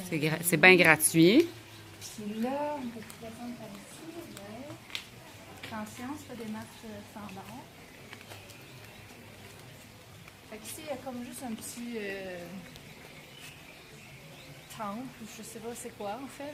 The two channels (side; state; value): both; identical; correlation 1.00